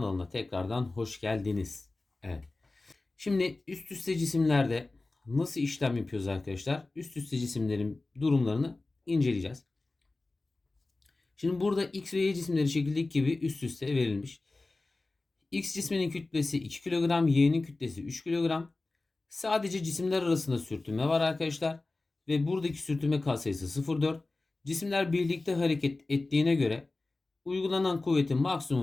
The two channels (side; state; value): right; quieter; 3.2 dB